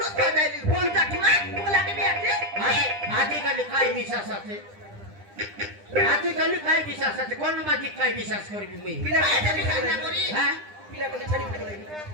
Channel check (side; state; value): left; late; 9.9 ms